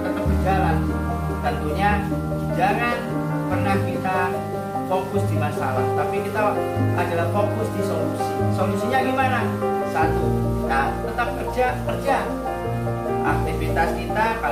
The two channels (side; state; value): both; identical; correlation 1.00